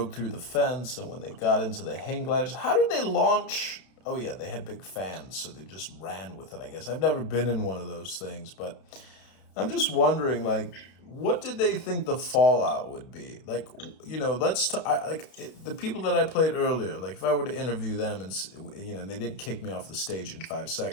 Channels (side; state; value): right; late; 32 ms